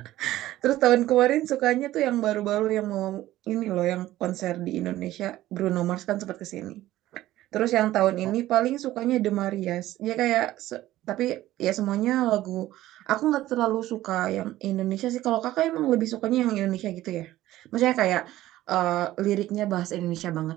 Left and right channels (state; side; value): quieter; left; 15.1 dB